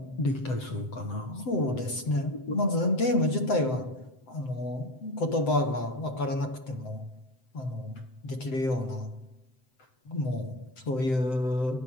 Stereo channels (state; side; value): late; right; 7.8 ms